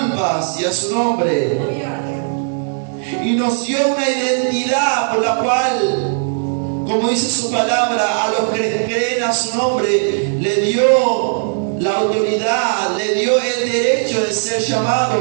y a su nombre. Y nos dio una identidad por la cual, como dice su palabra, a los que creen a su nombre le dio la autoridad, le dio el derecho de ser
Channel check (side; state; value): left; silent; digital silence